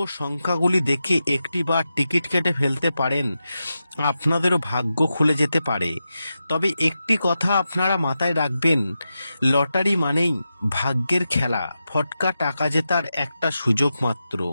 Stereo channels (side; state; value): both; inverted; correlation -0.90